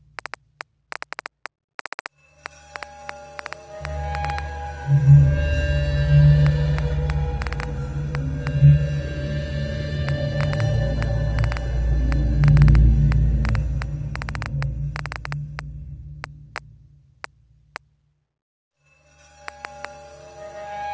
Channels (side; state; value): both; identical; correlation 1.00